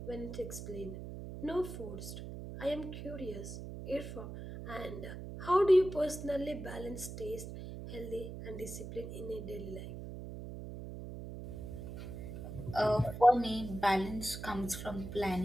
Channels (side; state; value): right; noise; hum, 9 dB below the sound